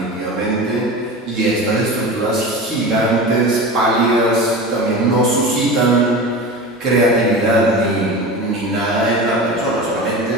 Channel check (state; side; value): normal; both; correlation 0.30